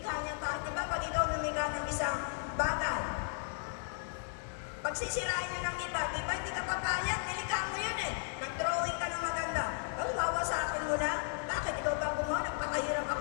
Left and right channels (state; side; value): silent; right; digital silence